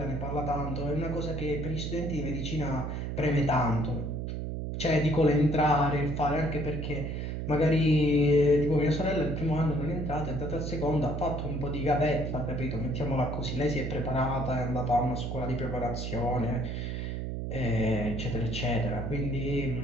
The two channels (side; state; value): right; noise; hum, 4 dB below the sound